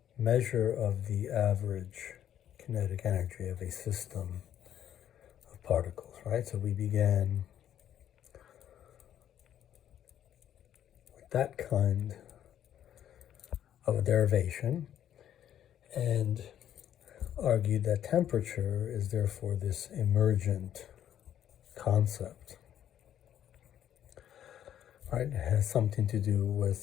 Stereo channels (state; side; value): quieter; right; 10.5 dB